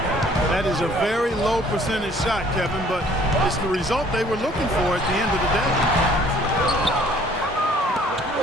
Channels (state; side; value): normal; both; correlation 0.57